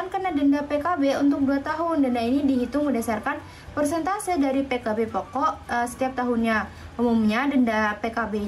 kena denda PKB untuk 2 tahun. Denda ini dihitung berdasarkan persentase dari PKB pokok setiap tahunnya. Umumnya denda PKB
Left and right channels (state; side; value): identical; both; correlation 1.00